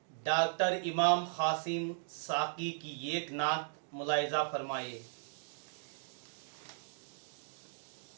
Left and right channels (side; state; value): left; silent; digital silence